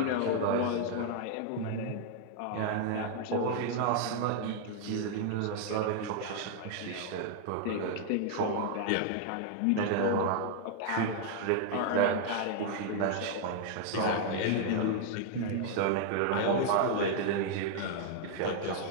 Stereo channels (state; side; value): different; both; correlation 0.00